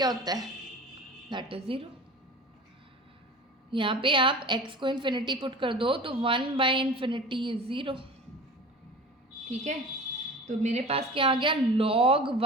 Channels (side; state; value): both; normal; correlation 0.37